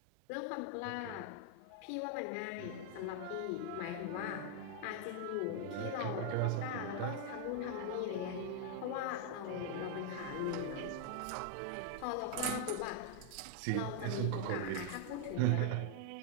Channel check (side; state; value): both; different; correlation 0.00